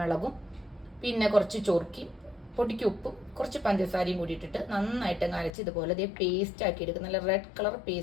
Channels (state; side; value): drops out; right; at 5.5 s